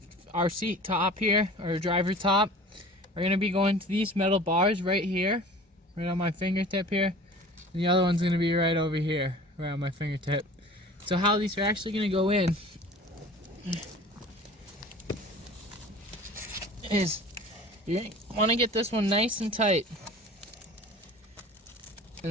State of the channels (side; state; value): both; normal; correlation 0.43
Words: our seat top here, or driver top, are going to be going to these metal bars right here, right on my fingertip here. And the other one's going to be right over here, right on my fingertip. So how these are actually going to go in is you want to get this one nice and tight. And